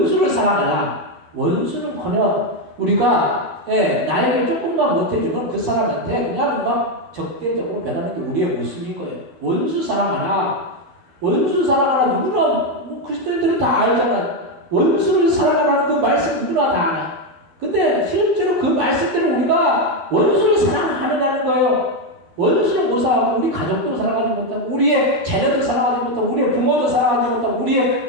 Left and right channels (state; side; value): late; left; 12 ms